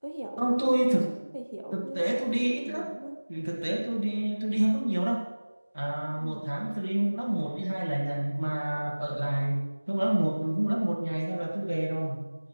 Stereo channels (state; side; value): inverted; both; correlation -1.00